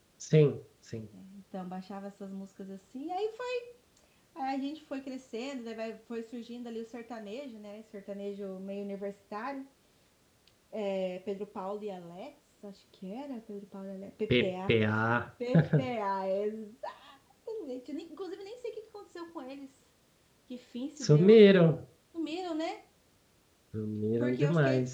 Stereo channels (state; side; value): identical; both; correlation 1.00